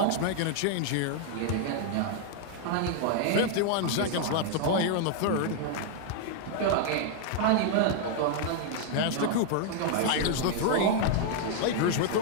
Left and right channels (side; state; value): both; different; correlation 0.00